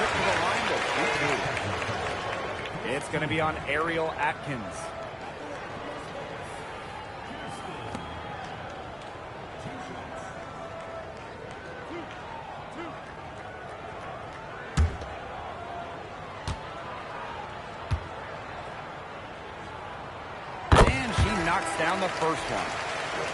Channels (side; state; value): both; identical; correlation 1.00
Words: to the line to shoot. It's going to be on Ariel Atkins. Knocks down the first one.